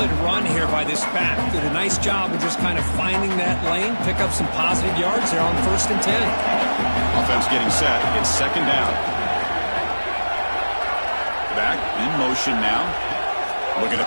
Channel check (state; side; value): inverted; both; correlation -1.00